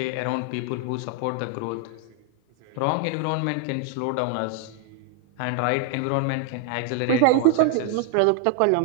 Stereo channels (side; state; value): both; different; correlation 0.00